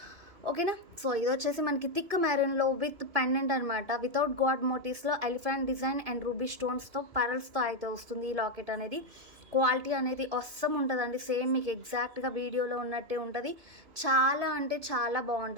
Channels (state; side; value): late; left; 2.5 ms